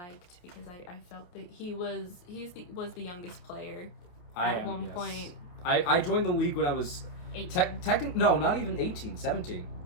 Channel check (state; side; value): late; right; 28 ms